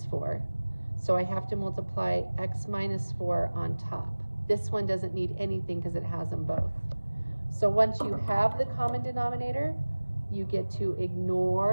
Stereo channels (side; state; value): both; inverted; correlation -1.00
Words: 4. So I have to multiply x minus 4 on top. This one doesn't need anything because it has them both. So once you have the common denominator, you get to